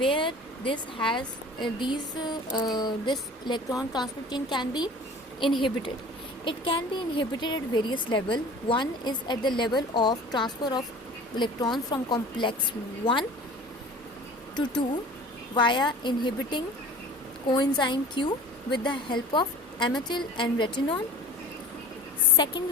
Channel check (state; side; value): normal; both; correlation 0.42